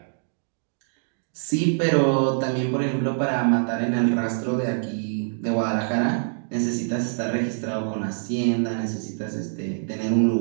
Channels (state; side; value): silent; left; digital silence